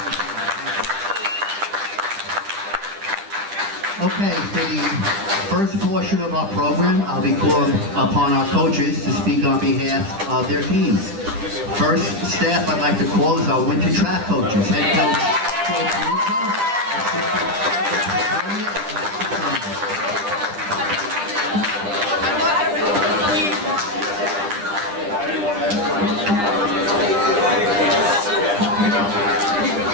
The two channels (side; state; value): left; late; 10 ms